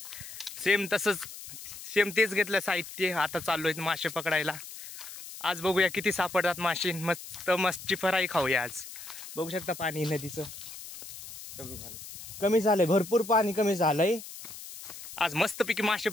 सेम तेच घेतलं साहित्य. आता चाललोय मासे पकडायला. आज बघूया किती सापडतात मासे. मस्त मच्छी फ्राय खाऊया आज. बघू शकता पाणी नदीचं कमी झालंय, भरपूर पाणी कमी झालंय. आज मस्तपैकी मासे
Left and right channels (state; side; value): noise; left; hiss, 13 dB below the sound